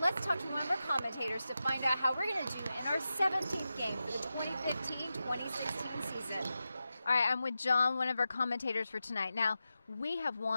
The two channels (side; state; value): both; inverted; correlation -0.91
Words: let's talk to one of our commentators to find out how we're going to do in our 17th game for the 2015-2016 season. All right, I'm with John, one of our commentators for tonight. Now, we have